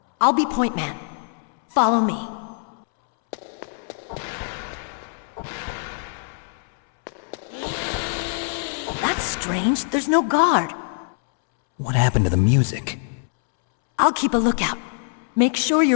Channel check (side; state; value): right; silent; 63 dB below the other